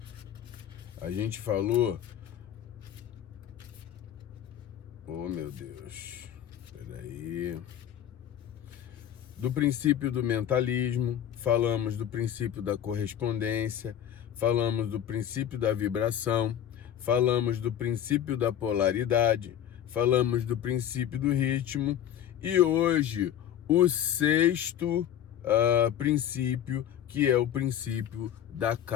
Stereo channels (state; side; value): quieter; right; 10.3 dB